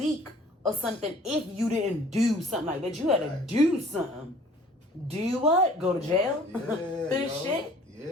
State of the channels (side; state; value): both; normal; correlation 0.52